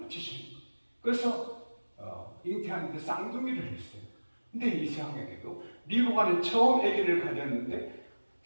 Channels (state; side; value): inverted; both; correlation -1.00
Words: 거예요. 그래서 잉태하는데 쌍둥이를 했어요. 근데 이상하게도 리브가는 처음 아기를 가졌는데